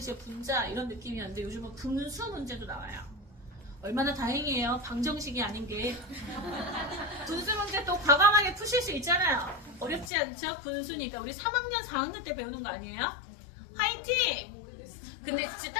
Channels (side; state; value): right; drops out; at 10.1 s